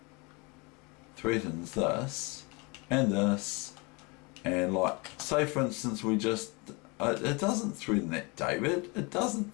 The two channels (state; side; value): quieter; right; 28.6 dB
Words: threatens this and this, and like, say for instance we just it doesn't threaten that, David. It doesn't